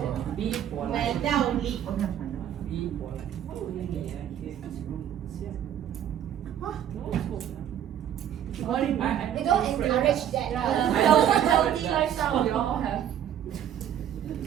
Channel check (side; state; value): left; quieter; 10.2 dB